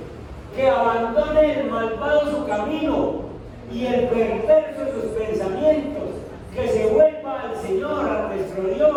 que abandone el malvado su camino y el perverso sus pensamientos, que se vuelva al Señor, a nuestro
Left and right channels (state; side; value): identical; both; correlation 1.00